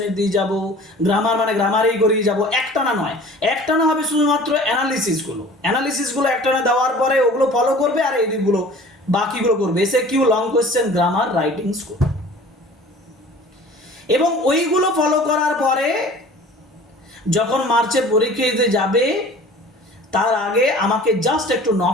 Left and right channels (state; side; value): normal; both; correlation 0.45